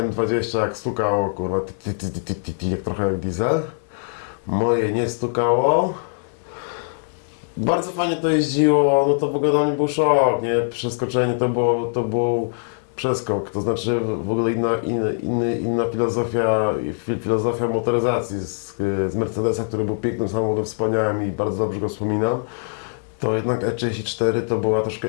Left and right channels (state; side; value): silent; right; 64 dB below the other